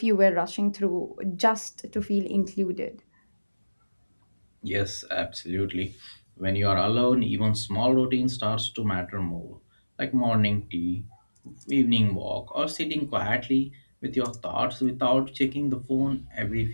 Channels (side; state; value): both; inverted; correlation -1.00